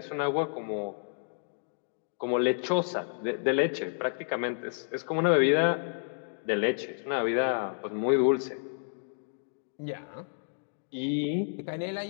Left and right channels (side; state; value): right; silent; digital silence